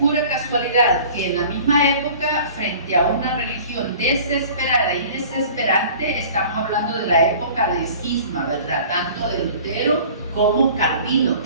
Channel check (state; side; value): inverted; both; correlation -0.45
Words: casualidad que en la misma época, frente a una religión desesperada y desesperante, estamos hablando de la época de cisma, ¿verdad? Tanto de Lutero como Calvino,